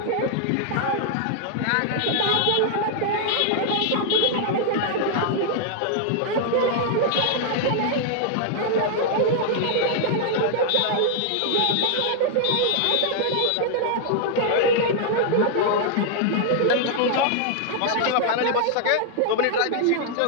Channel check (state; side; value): different; both; correlation -0.01